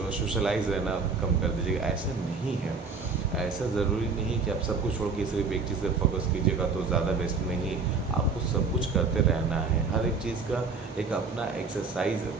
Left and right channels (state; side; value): quieter; left; 4.5 dB